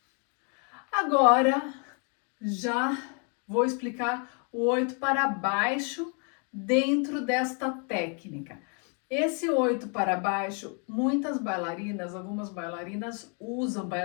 Agora, já vou explicar o 8 para baixo dentro desta técnica. Esse 8 para baixo, muitas bailarinas, algumas bailarinas usam,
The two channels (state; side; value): quieter; right; 38.5 dB